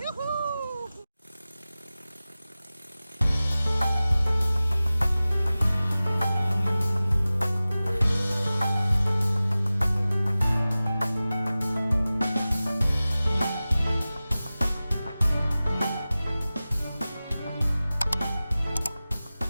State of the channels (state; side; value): inverted; both; correlation -0.97